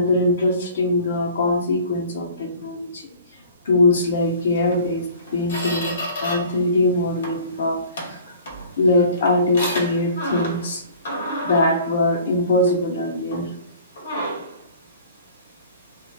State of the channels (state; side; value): inverted; both; correlation -0.48